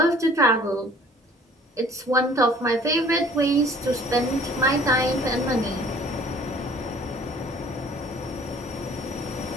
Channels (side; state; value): both; normal; correlation 0.52